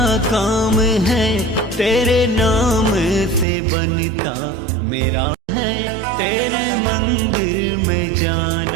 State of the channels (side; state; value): left; drops out; at 3.5 s